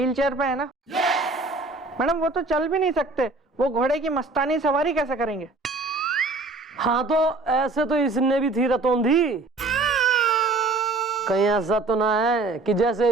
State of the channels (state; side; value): quieter; left; 3.4 dB